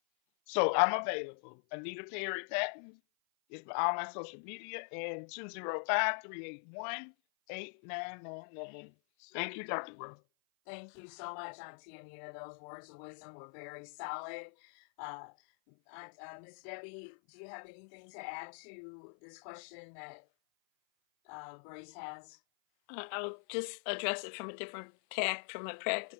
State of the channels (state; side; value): silent; right; 50 dB below the other